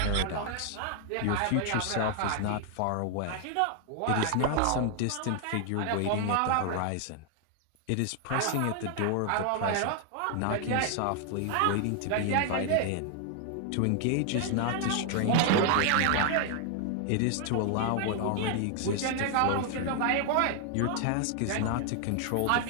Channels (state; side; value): different; both; correlation 0.00